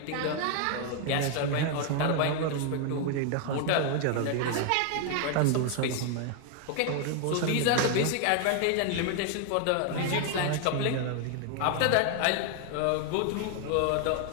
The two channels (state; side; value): different; both; correlation 0.00